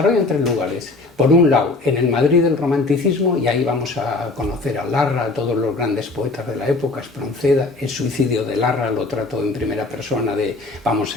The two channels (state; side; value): quieter; right; 3.4 dB